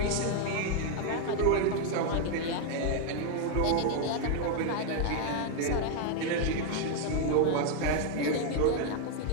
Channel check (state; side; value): different; both; correlation 0.01